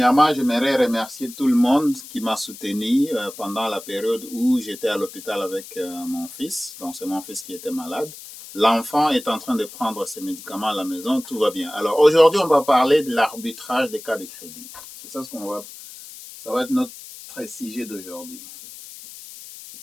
j'aimerais remercier tout le monde qui m'a soutenu pendant la période où j'étais à l'hôpital avec mon fils. Donc, c'est mon fils qui était malade. L'enfant est en train de prendre ses médicaments à la maison, tout va bien. Alors, aujourd'hui, on va parler de l'arbitrage des cartes de crédit. C'est ça ça va être notre sujet d'aujourd'hui.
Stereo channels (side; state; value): left; noise; hiss, 15 dB below the sound